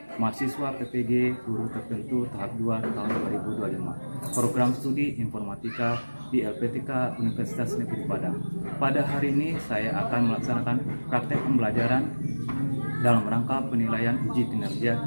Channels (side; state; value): both; inverted; correlation -1.00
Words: Mahasiswa PPG Guru Tertentu tahap 2 tahun 2025. Program studi Informatika di LPTK Universitas Negeri Padang. Pada hari ini saya akan melaksanakan praktek pembelajaran dalam rangka penilaian uji kinerja